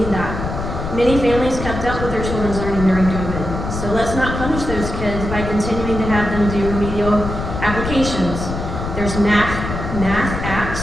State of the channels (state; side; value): noise; left; rumble, 5 dB below the sound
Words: that. Many families kept up with their children's learning during COVID, so let's not punish those kids by continuing to have them do remedial applications. There's math